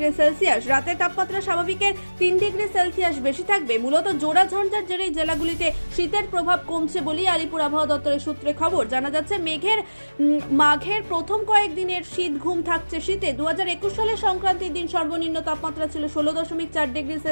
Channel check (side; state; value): both; inverted; correlation -1.00